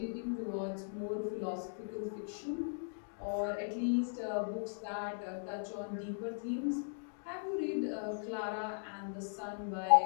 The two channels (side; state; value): right; silent; digital silence